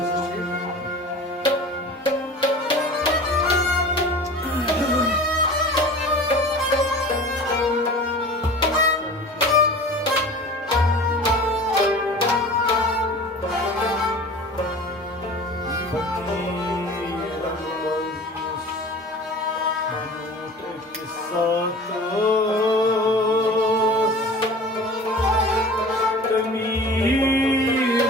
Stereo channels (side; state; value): both; normal; correlation 0.39